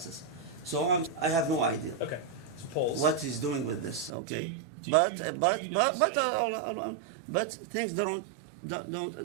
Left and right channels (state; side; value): drops out; left; at 4.1 s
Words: so I have no idea. Okay. So pause. What he's doing with this? Okay, Do you not say- but things don't